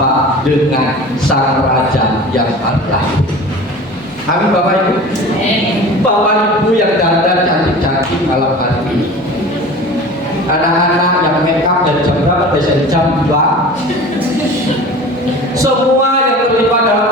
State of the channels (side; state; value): both; normal; correlation 0.38